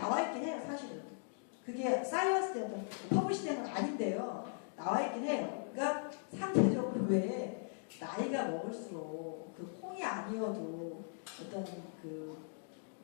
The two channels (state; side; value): silent; right; digital silence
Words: 있긴 해요. 사실은 그게 사이언스에 어떤 퍼블리시된 건 아닌데요. 나와 있긴 해요. 그러니까 상대적으로 왜 나이가 먹을수록 그 콩이 아니어도 어떤 그